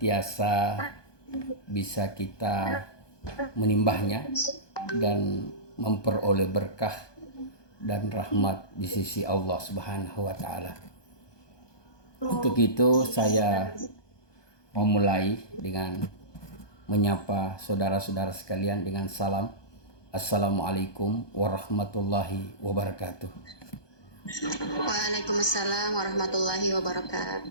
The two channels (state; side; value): late; right; 1.2 ms